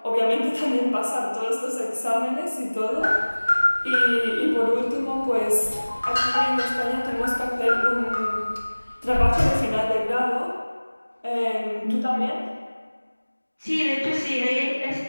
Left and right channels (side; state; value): both; inverted; correlation -1.00